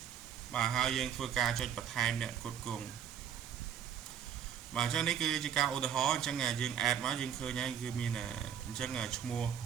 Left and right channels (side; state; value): left; quieter; 8.7 dB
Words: mà hai dân phơi ca cho bật time nè cột cùng mà cho nên cứ chỉ cao ô tô chẳng là dân ad mà dân khơi nhanh cứ mình là chẳng là mua